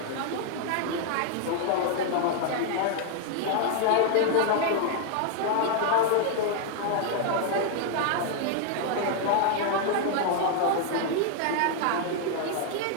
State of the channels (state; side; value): different; both; correlation 0.00